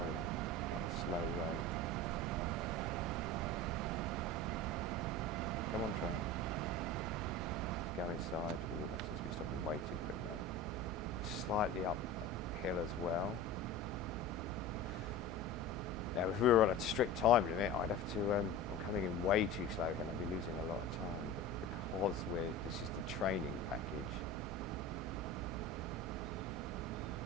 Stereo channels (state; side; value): normal; both; correlation 0.32